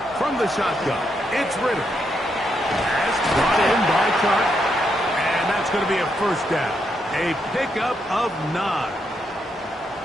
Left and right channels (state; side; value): normal; both; correlation 0.79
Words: From the shotgun, it's Ritter. That's brought in by Clark. And that's going to be a first down. A pickup of 9.